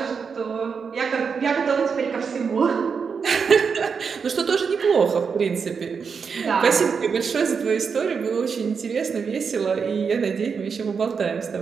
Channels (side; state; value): left; quieter; 5.9 dB